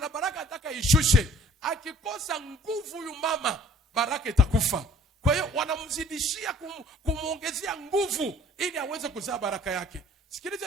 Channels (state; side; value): normal; both; correlation 0.54